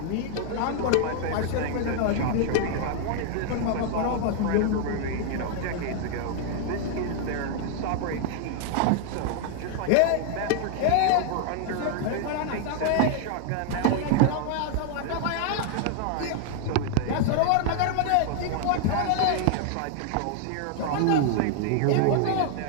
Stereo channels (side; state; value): both; different; correlation 0.00